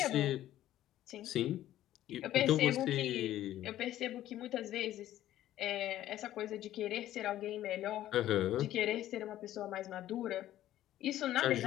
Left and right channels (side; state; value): right; quieter; 13.3 dB